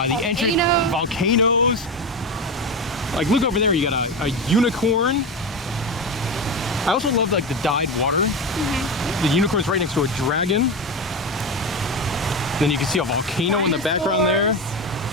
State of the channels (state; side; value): normal; both; correlation 0.19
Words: entrance, volcanoes. Like, look over there, you got a unicorn. I also love like the dyed water. The unicorn's right next to a dragon. Then you can see a volcano in the background there.